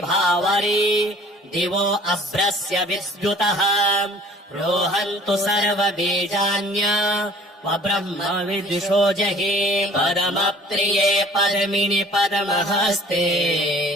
दिवो अभ्रस्य विद्युतः रोहन्तु सर्वबीजान्य ब्रह्म विदुषो जहि पदमप्रिये पद्मिनि पद्महस्ते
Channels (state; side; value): normal; both; correlation 0.51